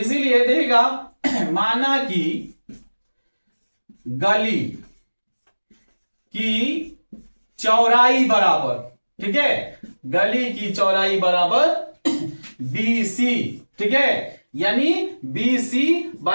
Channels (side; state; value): both; inverted; correlation -1.00